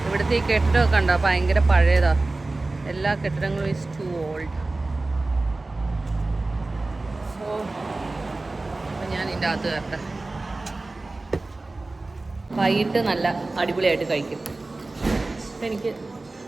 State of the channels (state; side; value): quieter; left; 3.2 dB